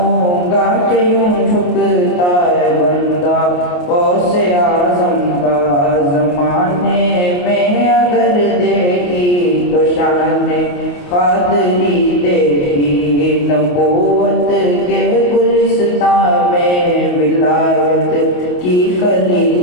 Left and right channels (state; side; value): late; right; 28 ms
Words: گا کہ یوں جھکتا ہے بندہ غوث اعظم کا زمانے میں اگر دیکھی تو شان قادری دیکھی نبوت کے گلستان میں ولایت کی کلی